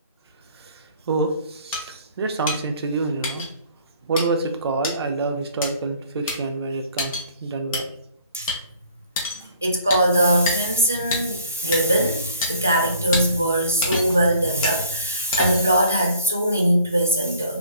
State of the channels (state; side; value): inverted; both; correlation -0.56